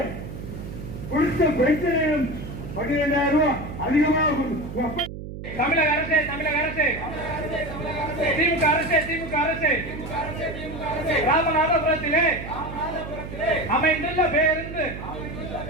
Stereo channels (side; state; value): right; noise; hum, 10 dB below the sound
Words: கொடுத்த பென்ஷனையும் 12,000 ரூபாய் அதிகமாக தமிழக அரசு திமுக அரசு ராமநாதபுரத்திலே அமைந்துள்ள பேருந்து